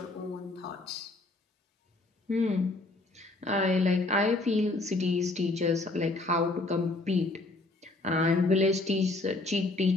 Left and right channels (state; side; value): quieter; right; 3.0 dB